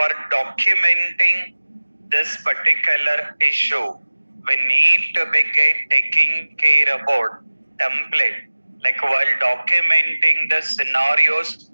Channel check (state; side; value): inverted; both; correlation -1.00